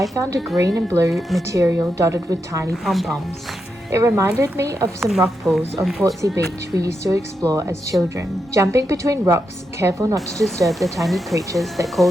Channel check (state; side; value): normal; both; correlation 0.85